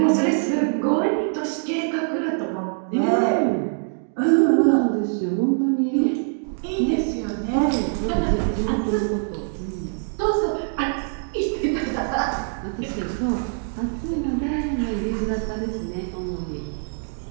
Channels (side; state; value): left; silent; digital silence